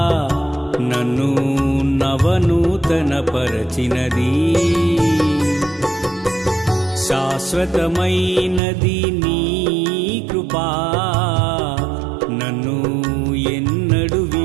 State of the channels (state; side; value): drops out; left; at 8.6 s